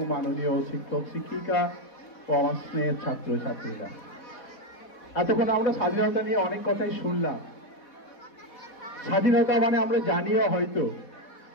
মাননীয় শিক্ষক শিক্ষিকা ও আমার স্নেহের ছাত্রছাত্রীরা, এতক্ষণ আমরা স্বাধীনতা নিয়ে অনেক কথাই শুনলাম। স্বাধীনতা মানে আমরা জানিও হয়তো,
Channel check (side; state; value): right; late; 4.1 ms